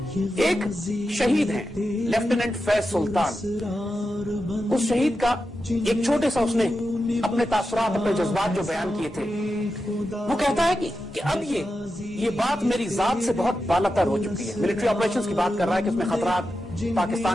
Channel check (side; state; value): both; normal; correlation 0.90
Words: ایک شہید ہیں لیفٹیننٹ فیض سلطان، اس شہید کا ایک چھوٹے سا اس نے اپنے تاثرات اپنے جذبات جو بیان کیے تھے، وہ کہتا ہے کہ اب یہ بات میری ذات سے بہت بالاتر ہو چکی ہے۔ ملٹری آپریشنز کی بات کر رہا ہے کہ اس میں خطرات،